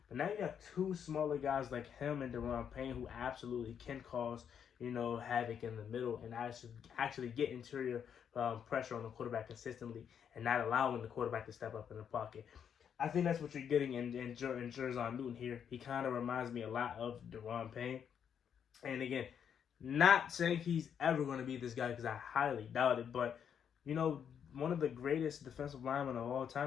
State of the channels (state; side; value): quieter; right; 8.1 dB